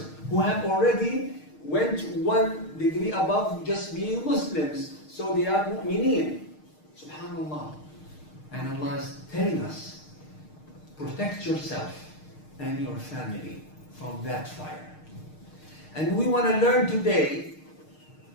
who have already went one degree above just being Muslims. So they are mu'mineen. Subhanallah. And Allah is telling us, protect yourself and your family from that fire. And we want to learn today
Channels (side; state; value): right; late; 6.5 ms